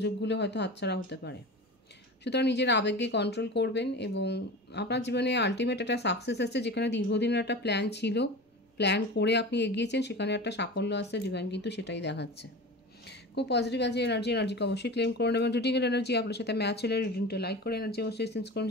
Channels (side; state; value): both; normal; correlation 0.32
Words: হয়তো হাতছাড়া হতে পারে। সুতরাং নিজের আবেগকে কন্ট্রোল করবেন এবং আপনার জীবনে আলটিমেট একটা সাকসেস আসছে। যেখানে দীর্ঘদিনের একটা প্ল্যান ছিল, প্ল্যান করে আপনি এগিয়েছেন, সেখানে একটা সাফল্য আসছে। ডিভাইন কিন্তু সেটাই দেখাচ্ছে। খুব পজিটিভ আছে এনার্জিকে অবশ্যই ক্লেম করুন, এবং রিডিংয়ের এনার্জি আপনার সাথে ম্যাচ হলে রিডিংটা লাইক করে এনার্জি অবশ্যই সেন্স করুন,